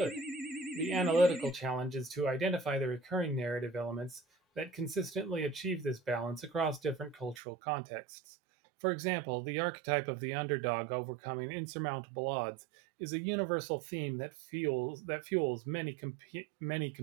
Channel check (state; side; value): drops out; left; at 7.4 s